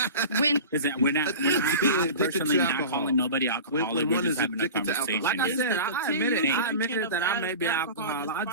Listen, we're not being I'm addicted personally to not alcohol. calling nobody alcoholic. When We're one just is having a addicted to alcohol. conversation. Like I said, I admitted that I may be alcohol alcohol.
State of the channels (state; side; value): inverted; both; correlation -0.34